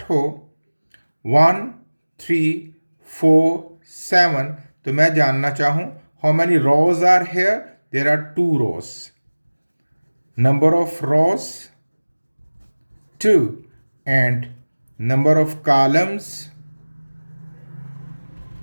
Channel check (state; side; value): inverted; both; correlation -1.00